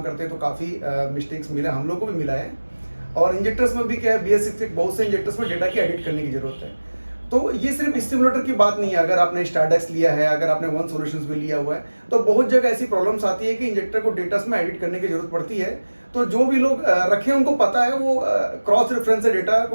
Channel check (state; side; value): inverted; both; correlation -1.00